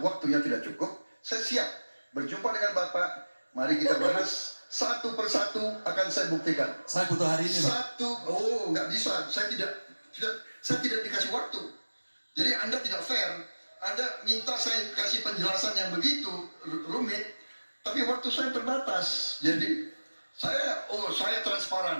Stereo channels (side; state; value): both; inverted; correlation -1.00